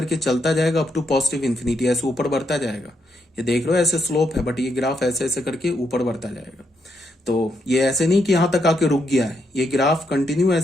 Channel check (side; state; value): both; normal; correlation 0.79